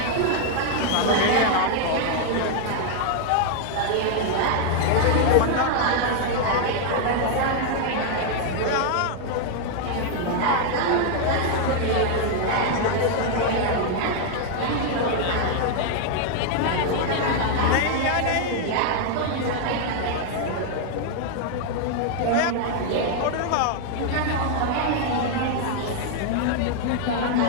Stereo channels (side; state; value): both; different; correlation 0.00